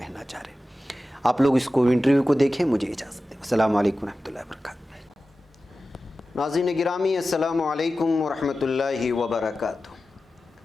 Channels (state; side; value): normal; both; correlation 0.94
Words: چاہ رہے ہیں۔ آپ لوگ اس کو انٹرویو کو دیکھیں، مجھے اجازت دیں۔ السلام علیکم ورحمۃ اللہ وبرکاتہ۔ ناظرین گرامی السلام علیکم ورحمۃ اللہ وبرکاتہ۔